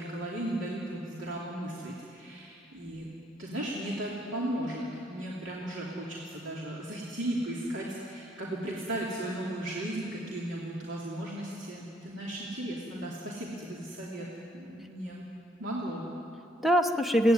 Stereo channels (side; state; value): both; normal; correlation 0.67